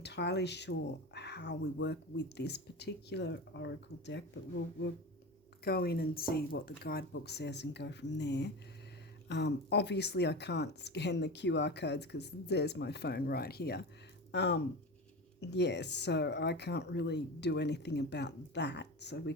sure how we work with this particular oracle deck, but we'll go in and see what the guidebook says and go from there. Obviously, I can't scan the QR codes because there's my phone right here. Yes, so I can't really do anything about that. So we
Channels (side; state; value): both; normal; correlation 0.27